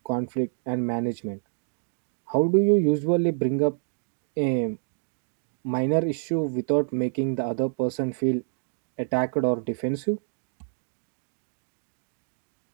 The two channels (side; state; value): left; silent; digital silence